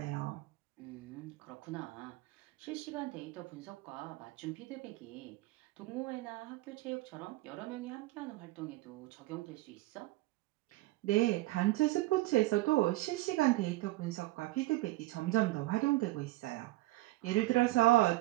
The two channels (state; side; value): quieter; left; 19.2 dB